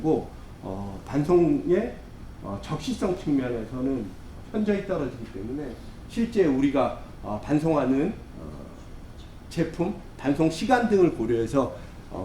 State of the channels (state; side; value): identical; both; correlation 1.00